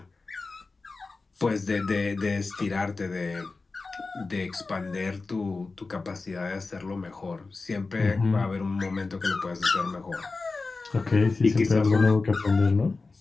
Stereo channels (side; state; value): right; quieter; 3.8 dB